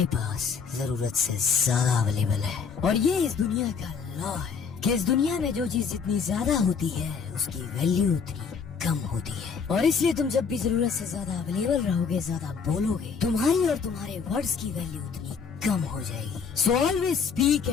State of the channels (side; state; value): right; quieter; 5.9 dB